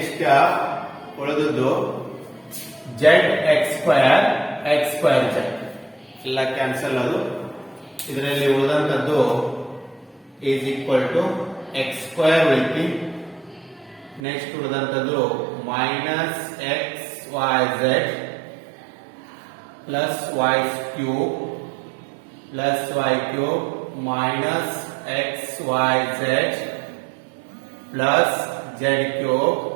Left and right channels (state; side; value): drops out; left; at 14.2 s